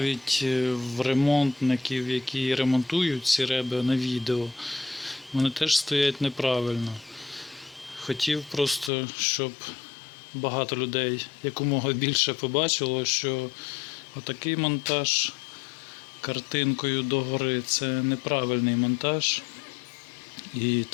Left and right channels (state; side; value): drops out; right; at 8.9 s